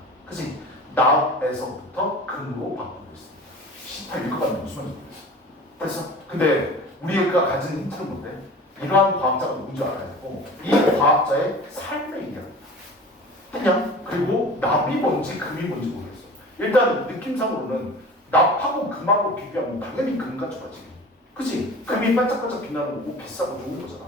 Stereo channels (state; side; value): normal; both; correlation 0.39